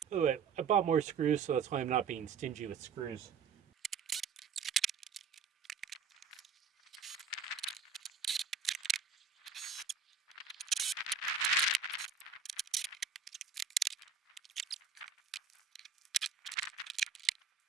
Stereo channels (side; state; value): left; quieter; 6.0 dB